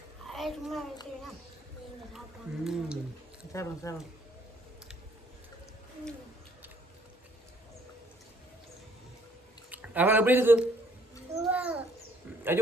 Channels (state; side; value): normal; both; correlation 0.63